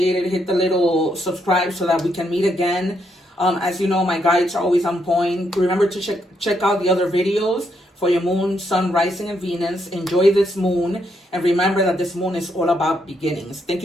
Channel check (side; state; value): both; normal; correlation 0.77